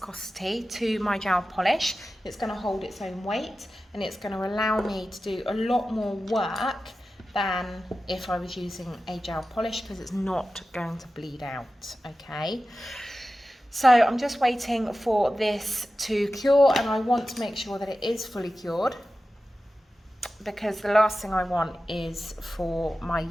to my gel polish. It's going to hold its own weight, and it's going to allow me to do a lot more work than if I was using a gel polish, because it's not going to bleed out, okay? So I'm just waiting for this to cure, and I want to make sure that it is fully cured, because the last thing I want is for my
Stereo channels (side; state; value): both; normal; correlation 0.94